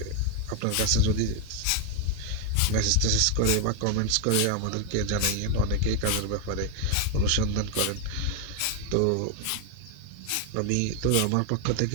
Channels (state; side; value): different; both; correlation 0.01